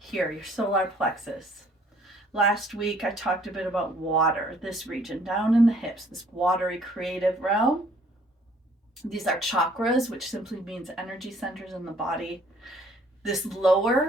your solar plexus. Last week, I talked a bit about water, this region down in the hips, this watery creative realm. These are chakras, which simply means energy centers in the body. This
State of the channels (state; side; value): normal; both; correlation 0.60